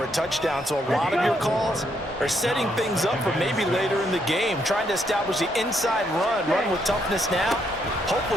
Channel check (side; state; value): both; normal; correlation 0.74